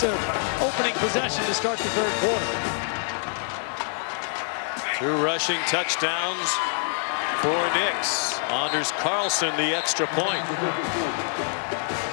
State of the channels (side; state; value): right; silent; 61 dB below the other